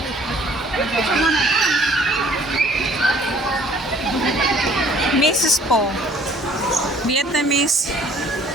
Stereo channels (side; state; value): both; normal; correlation 0.56